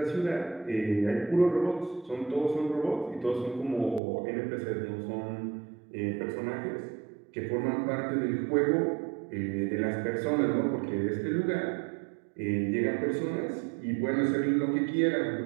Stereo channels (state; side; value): drops out; left; at 4.0 s